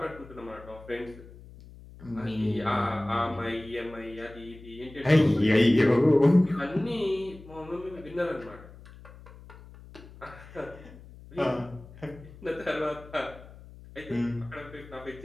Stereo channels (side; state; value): left; noise; hum, 19 dB below the sound